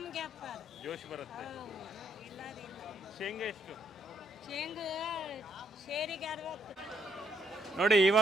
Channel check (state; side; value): normal; both; correlation 0.72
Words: ವ್ಯಾಪಾರ ಜೋಶ್ ಬರುತ್ತೆ. ಇಲ್ಲದಿಲ್ಲ. ಶೇಂಗಾ ಎಷ್ಟು? ಶೇಂಗಾ ಶೇರಿಗೆ 60. ನೋಡಿ